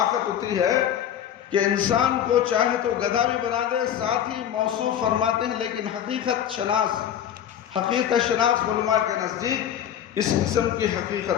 اتنی ہے کہ انسان کو چاہے تو گدھا بھی بنا دے، ساتھ ہی موصوف فرماتے ہیں، لیکن حقیقت شناس علماء کے نزدیک اس قسم کی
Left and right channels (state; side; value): quieter; right; 10.0 dB